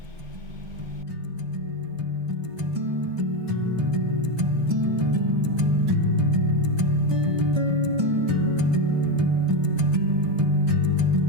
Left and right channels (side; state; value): left; late; 1.3 ms